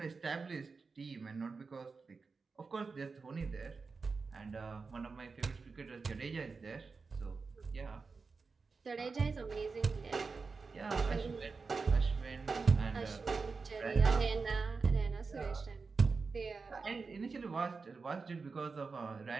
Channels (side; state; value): left; quieter; 4.5 dB